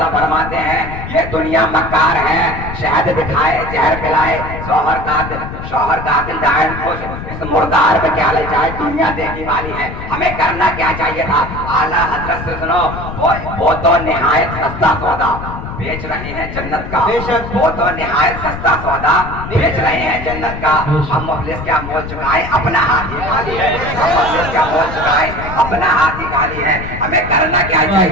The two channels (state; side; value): noise; left; rumble, 9 dB below the sound